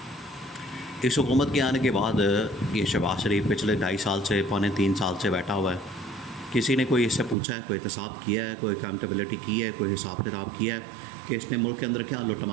इस हुकूमत के आने के बाद ये शहबाज शरीफ पिछले 2.5 साल से, पौने 3 साल से बैठा हुआ है। किसी ने कोई इससे पूछा है, कोई एहतसाब किया है, कोई अकाउंटेबिलिटी की है, कोई हिसाब किताब किया है कि इसने मुल्क के अंदर क्या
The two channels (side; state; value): left; drops out; at 7.4 s